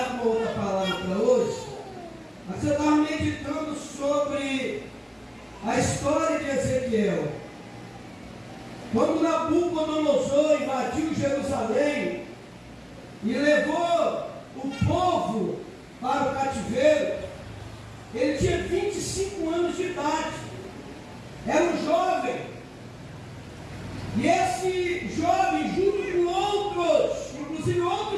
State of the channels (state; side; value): identical; both; correlation 1.00